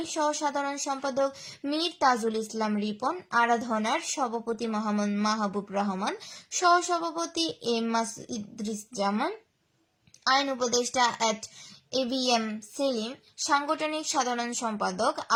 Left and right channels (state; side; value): identical; both; correlation 1.00